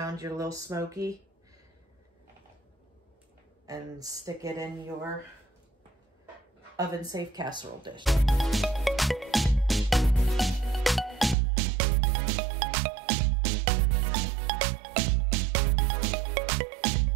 your little smoky, and stick it in your oven-safe casserole dish.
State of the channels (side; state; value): left; drops out; at 11.4 s